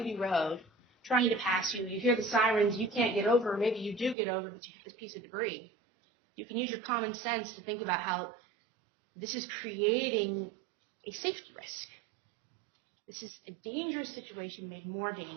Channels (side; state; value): left; drops out; at 4.2 s